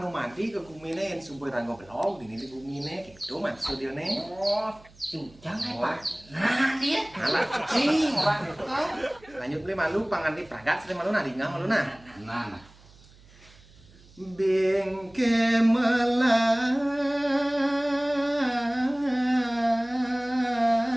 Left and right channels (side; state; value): right; noise; hum, 25 dB below the sound